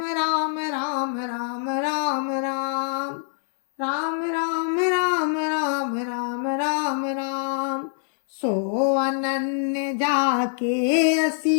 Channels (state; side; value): silent; right; 62 dB below the other